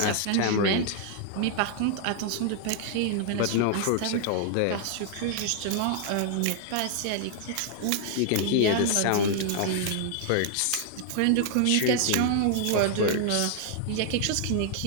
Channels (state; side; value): different; both; correlation 0.00